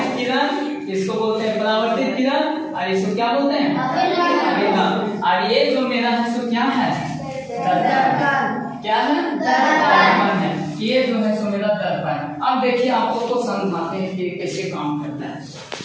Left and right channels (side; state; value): both; identical; correlation 1.00